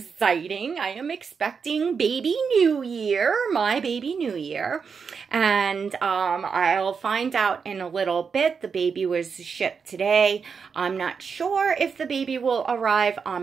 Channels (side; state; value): left; quieter; 5.9 dB